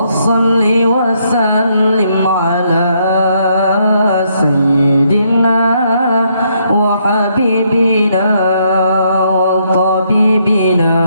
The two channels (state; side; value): inverted; both; correlation -0.73